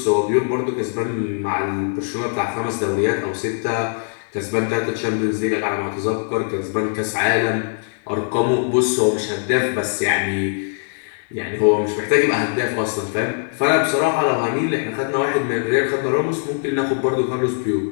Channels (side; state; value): right; silent; digital silence